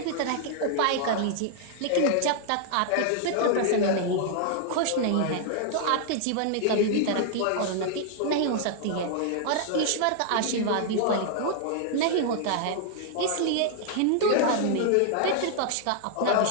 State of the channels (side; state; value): both; different; correlation 0.00